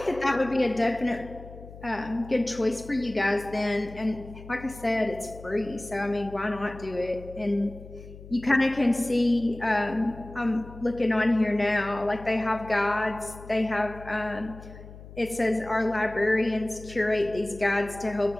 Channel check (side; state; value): left; noise; hum, 16 dB below the sound